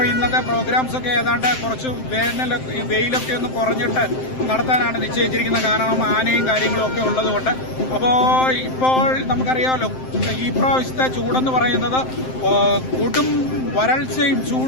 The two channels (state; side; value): late; right; 7.7 ms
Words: ഇന്നത്തെ പ്രോഗ്രാംസ് ഒക്കെ ഏതാണ്ട് കുറച്ച് വെയിലൊക്കെ ഒന്ന് കുറഞ്ഞിട്ട് നടത്താനാണ് നിശ്ചയിച്ചിരിക്കുന്നത്. കാരണം ആനയും കാര്യങ്ങളും ഒക്കെ ഉള്ളതുകൊണ്ട്. അപ്പോൾ ഇപ്പോൾ നമുക്കറിയാമല്ലോ, ഈ പ്രാവശ്യത്തെ ചൂടെന്ന് പറയുന്നത് കൊടും വരൾച്ചയും